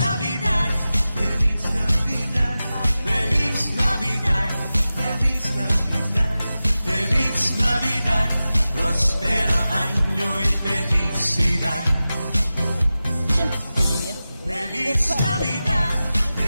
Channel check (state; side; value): inverted; both; correlation -0.95